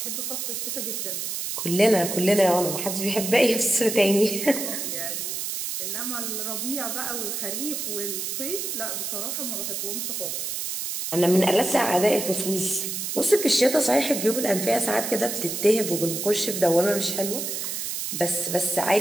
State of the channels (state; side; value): noise; right; hiss, 4 dB below the sound